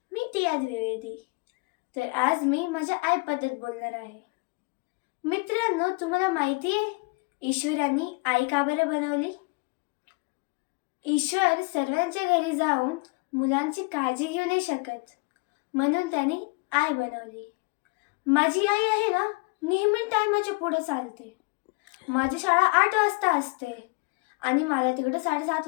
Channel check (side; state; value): right; quieter; 29.8 dB